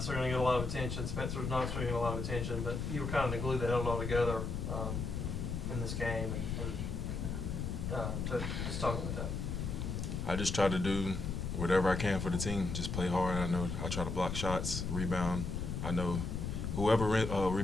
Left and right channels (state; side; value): noise; left; rumble, 3 dB below the sound